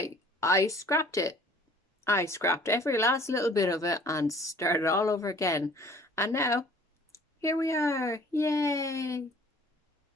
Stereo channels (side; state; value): both; normal; correlation 0.52